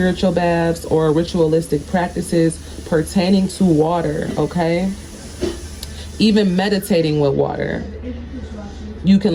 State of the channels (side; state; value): both; identical; correlation 1.00